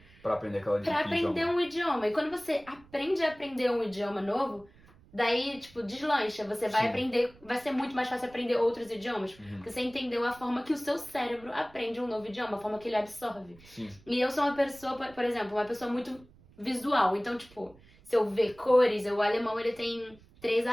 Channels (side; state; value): right; noise; rumble, 25 dB below the sound